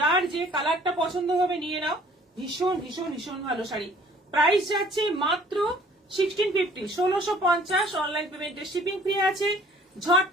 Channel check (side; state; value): both; normal; correlation 0.54